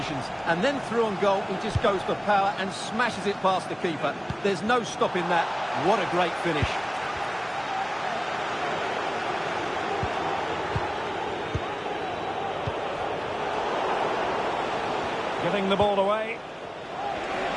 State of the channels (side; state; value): both; identical; correlation 1.00